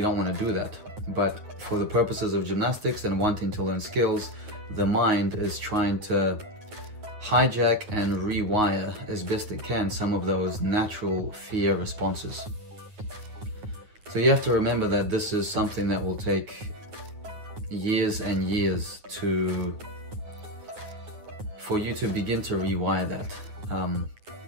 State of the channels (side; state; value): left; late; 9.4 ms